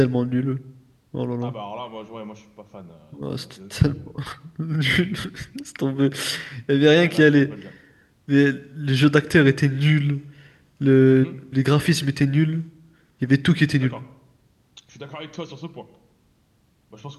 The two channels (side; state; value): both; identical; correlation 1.00